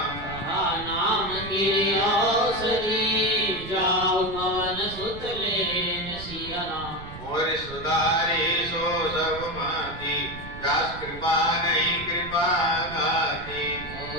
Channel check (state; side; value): noise; right; rumble, 13 dB below the sound